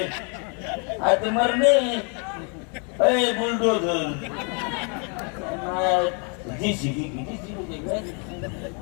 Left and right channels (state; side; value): quieter; right; 37.2 dB